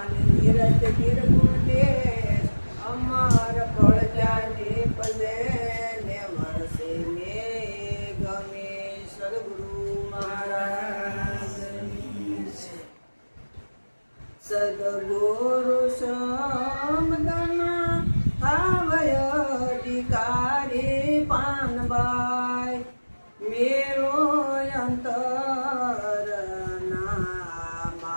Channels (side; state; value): both; inverted; correlation -1.00